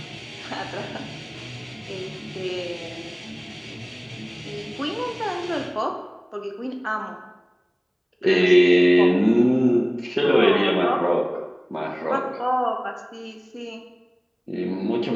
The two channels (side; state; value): both; identical; correlation 1.00